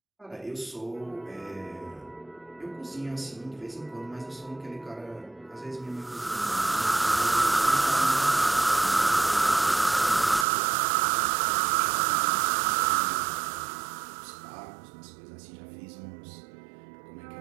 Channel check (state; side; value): drops out; left; at 10.5 s